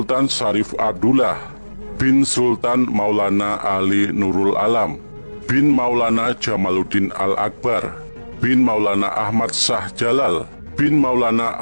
Syarif Abdullah bin Sultan Maulana Ali Nurul Alam bin Maulana Jamaluddin Al-Akbar bin Maulana Ahmad Shah Jalal bin Maulana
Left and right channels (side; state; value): both; inverted; correlation -1.00